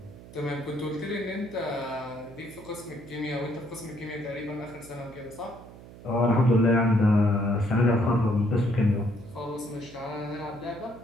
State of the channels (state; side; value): noise; right; hum, 18 dB below the sound